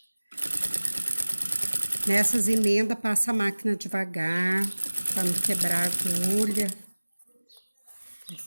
Nessas emendas, passa a máquina devagar, pra não quebrar a agulha.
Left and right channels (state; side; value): inverted; both; correlation -1.00